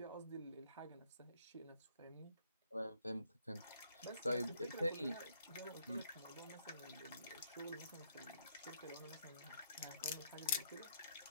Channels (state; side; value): inverted; both; correlation -0.68